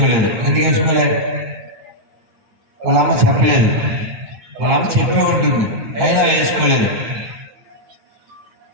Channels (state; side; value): late; left; 8.7 ms